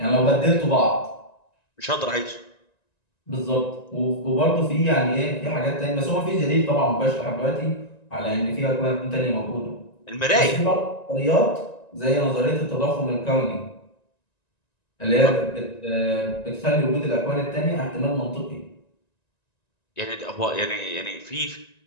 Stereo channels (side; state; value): right; late; 1.9 ms